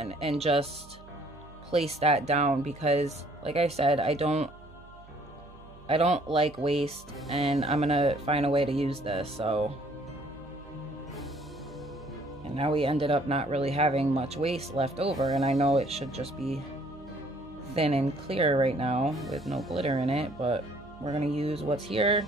and just place that down because like I said, I don't like waste, and I'm going to find a way to use this. So, and now we ended up not really having much waste left over, and I know it should just be thin and clear right now with no glitter in it, but we're going to use what's here.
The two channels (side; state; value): right; noise; hum, 22 dB below the sound